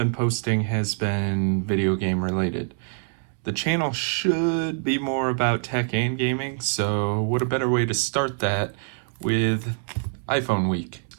posting has been video game related. The channel should be more about tech and gaming, so what a better way to start that with iPhone week.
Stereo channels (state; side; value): silent; left; digital silence